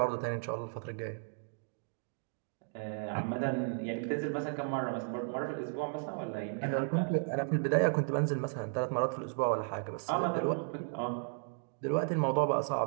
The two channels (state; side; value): silent; left; 55 dB below the other